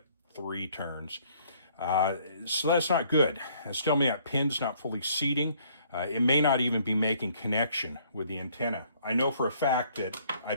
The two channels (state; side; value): inverted; both; correlation -0.62